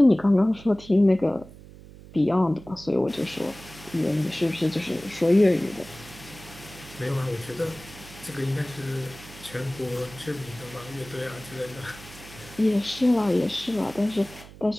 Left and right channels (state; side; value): noise; right; hum, 18 dB below the sound